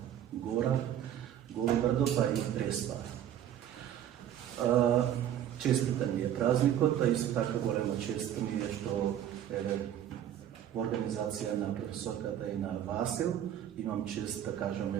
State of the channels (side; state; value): left; quieter; 10.7 dB